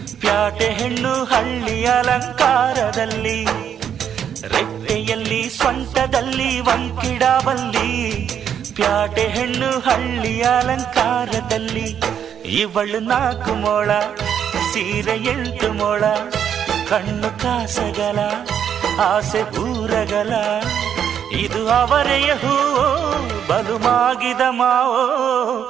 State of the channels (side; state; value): left; quieter; 8.7 dB